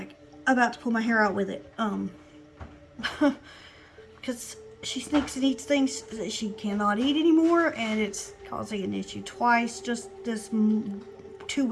about to pull my hair out with it. Because she sneaks and eats things that she cannot eat anymore, and it's causing an issue twice. Just this 2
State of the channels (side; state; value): both; identical; correlation 1.00